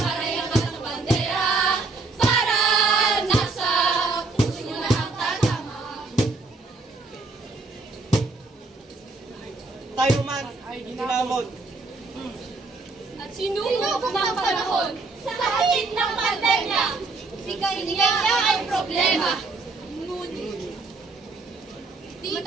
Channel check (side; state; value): left; quieter; 3.7 dB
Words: yung katang bandera, para nasa puso nyo na ang tatama. Tayo man ay hinamon. At sinulog ng panahon sa higit ng pandemya. Bigay niya ay problema. Ngunit, di